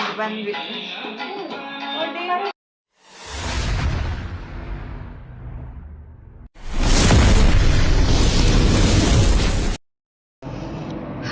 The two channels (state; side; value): identical; both; correlation 1.00